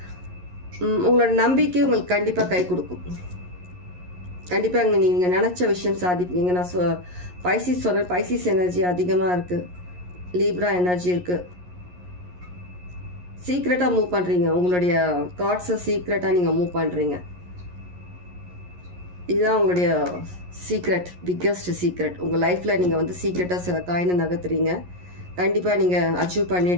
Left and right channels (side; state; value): left; late; 11 ms